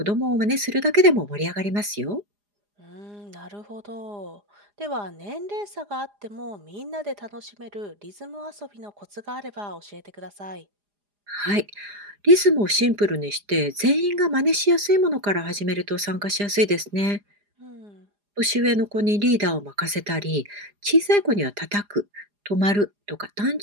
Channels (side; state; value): left; late; 4.9 ms